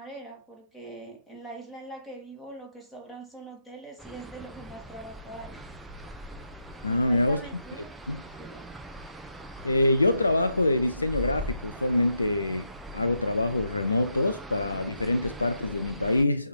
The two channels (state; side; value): inverted; both; correlation -0.81